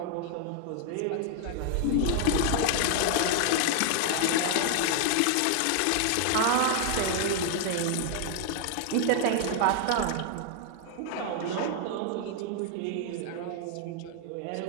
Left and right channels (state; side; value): different; both; correlation 0.00